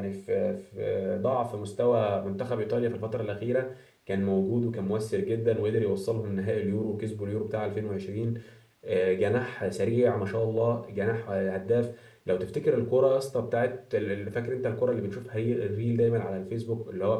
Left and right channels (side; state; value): both; identical; correlation 1.00